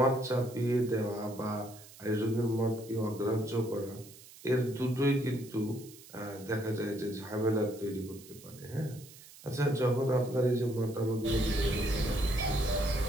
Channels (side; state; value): right; noise; hiss, 20 dB below the sound